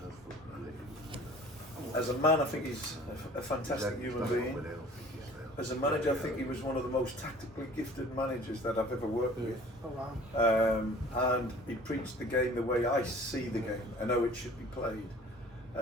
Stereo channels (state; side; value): normal; both; correlation 0.48